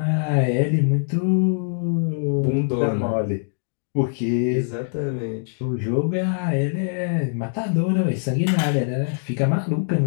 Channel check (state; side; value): silent; right; digital silence